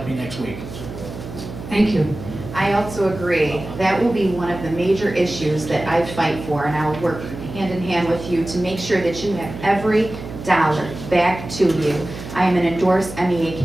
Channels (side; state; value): right; noise; hum, 11 dB below the sound